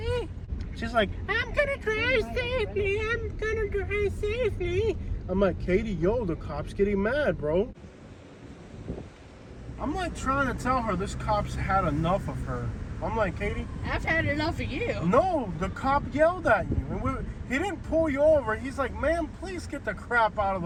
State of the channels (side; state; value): both; identical; correlation 1.00